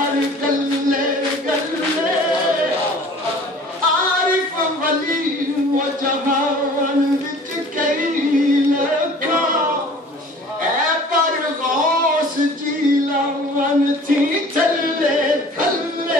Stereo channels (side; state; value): both; normal; correlation 0.47